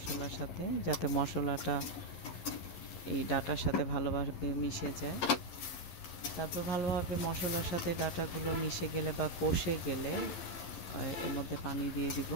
সাথে, যাতে মশলাটা এই ডাঁটার সাথে ভালোভাবে মিশে যায়। তারপর ভালোভাবে মশলার সাথে ডাঁটাগুলো মিশে গেলে বা কষে গেলে এর মধ্যে পানি দিয়ে দিব।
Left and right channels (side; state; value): right; late; 11 ms